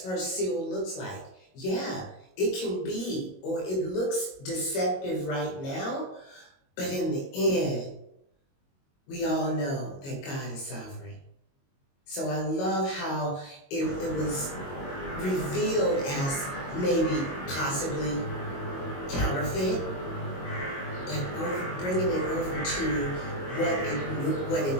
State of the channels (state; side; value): late; right; 22 ms